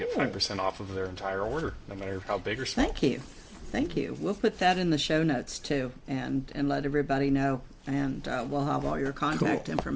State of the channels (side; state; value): both; identical; correlation 1.00